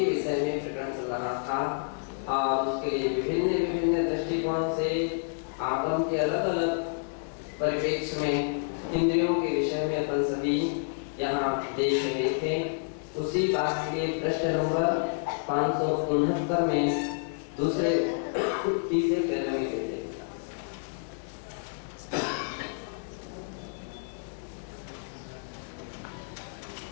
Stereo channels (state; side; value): silent; right; digital silence